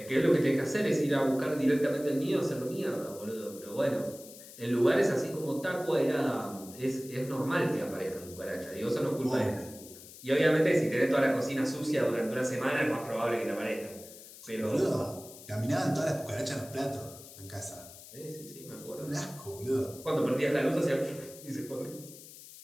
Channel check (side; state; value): left; noise; hiss, 17 dB below the sound